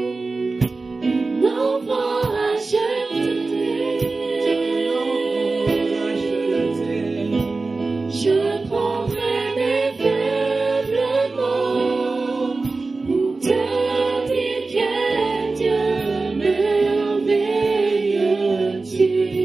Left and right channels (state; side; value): quieter; left; 3.7 dB